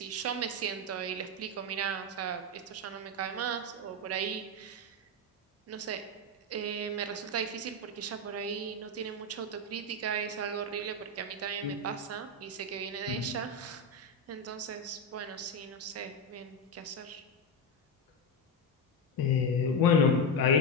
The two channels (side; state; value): both; normal; correlation 0.10